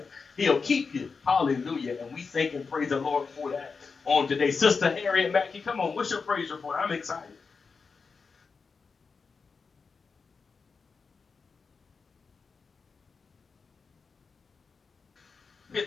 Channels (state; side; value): quieter; right; 4.9 dB